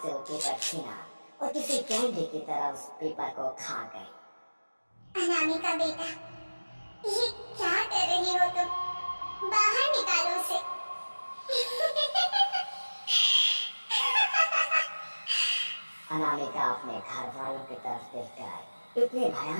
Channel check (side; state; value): both; inverted; correlation -1.00